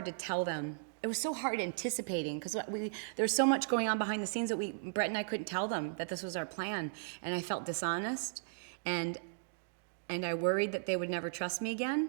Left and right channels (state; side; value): silent; left; digital silence